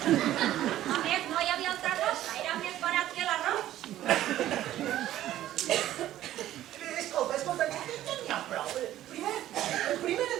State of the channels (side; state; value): left; quieter; 13.3 dB